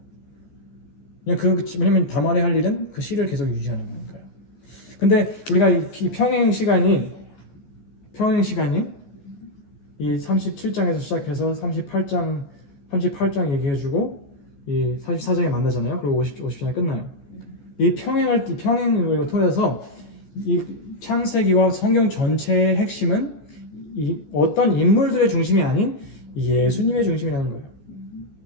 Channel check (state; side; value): late; right; 14 ms